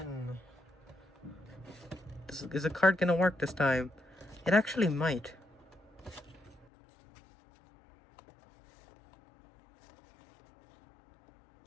Is the card gonna work this time? It actually might.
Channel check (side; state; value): right; drops out; at 6.7 s